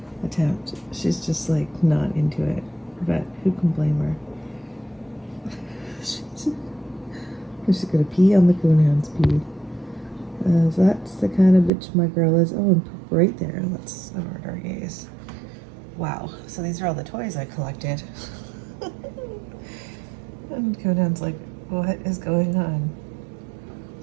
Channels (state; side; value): drops out; left; at 11.7 s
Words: attempt. She's just like not into it, but who can blame her? She's gonna pee on the coonhound's pee. That's the kind of bitch my girl is. Oh, and poop right there. Let's avert our gaze. Wow. So these are all the toys I collected. And Coonhound's like, what is going on?